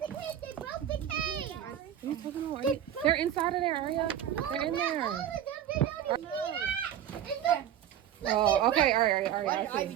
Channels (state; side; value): quieter; left; 10.5 dB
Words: the cage. They broke the cage. What are you talking about? They're inside of there, Aria. They're in there. Oh, okay. All right. I